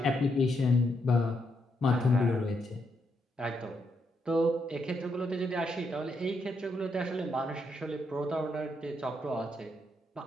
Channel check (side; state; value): both; normal; correlation 0.79